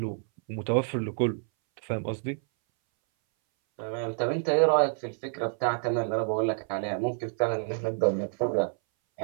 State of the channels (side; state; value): left; silent; 59 dB below the other